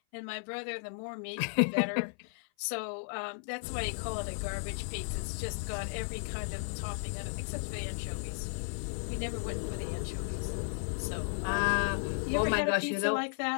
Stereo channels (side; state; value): right; silent; 55 dB below the other